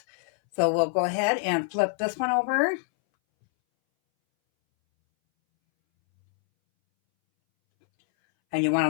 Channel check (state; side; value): silent; right; 62 dB below the other